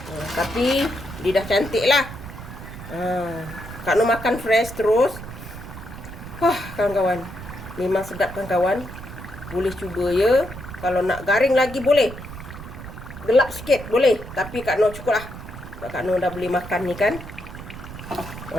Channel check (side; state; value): right; noise; rumble, 12 dB below the sound